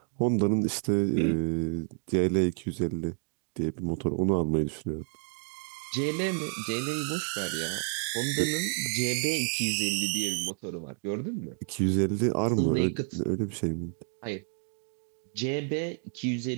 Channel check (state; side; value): silent; left; 58 dB below the other